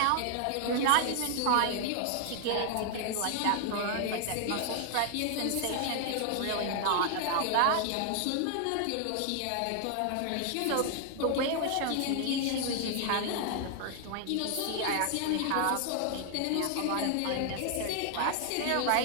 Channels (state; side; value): different; both; correlation 0.00